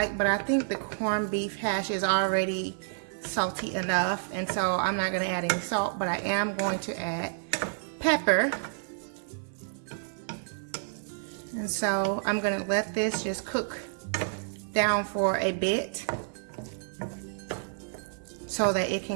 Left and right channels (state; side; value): silent; left; 56 dB below the other